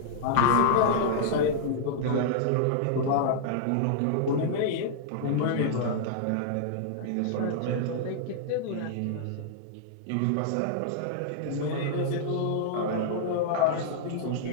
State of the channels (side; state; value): both; different; correlation -0.01